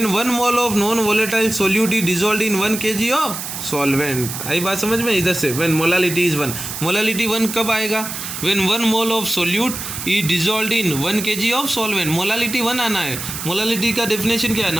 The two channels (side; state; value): right; noise; hiss, 7 dB below the sound